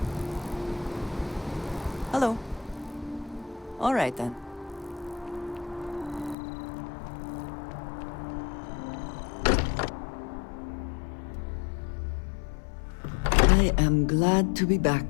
Hello. All right then. I am glad to be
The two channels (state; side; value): drops out; right; at 6.4 s